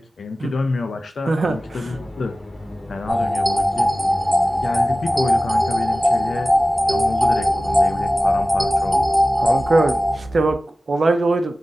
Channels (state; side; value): normal; both; correlation 0.96